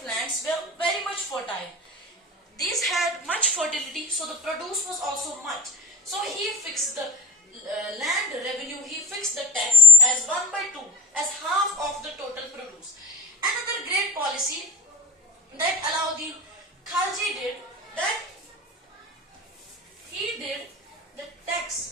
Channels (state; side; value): normal; both; correlation 0.50